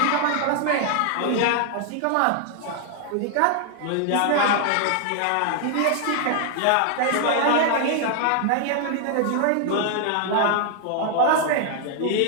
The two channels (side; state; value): both; different; correlation 0.00